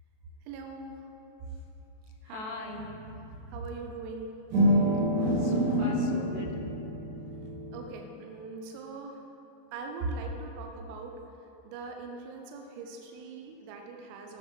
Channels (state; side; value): late; left; 32 ms